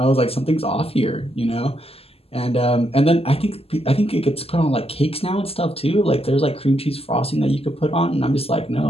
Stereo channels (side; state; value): right; late; 0.29 ms